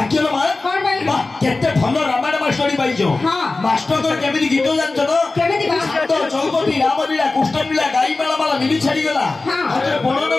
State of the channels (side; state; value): right; quieter; 3.4 dB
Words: लो मां कौन भाई वाह केते भल रामायण मास्टरी पाइजो हां मास्टर को केमिति गीत जानछो तो केमिति गा तो चौपती रामलीला कृष्णलीला गाई मेला माला मिली छाड़ी गला हां आते बणन